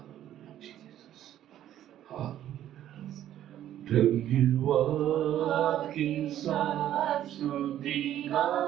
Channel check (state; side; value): quieter; left; 11.8 dB